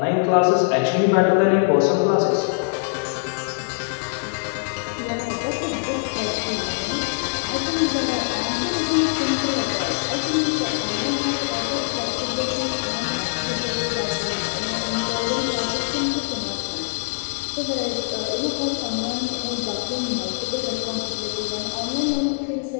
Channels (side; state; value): right; silent; digital silence